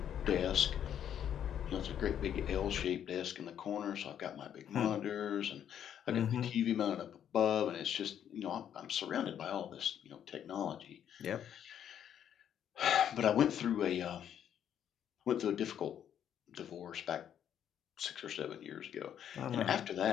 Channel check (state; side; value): quieter; right; 9.5 dB